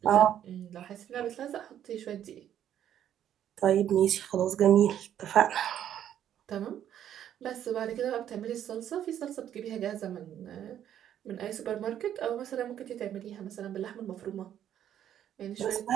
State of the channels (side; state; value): left; quieter; 10.5 dB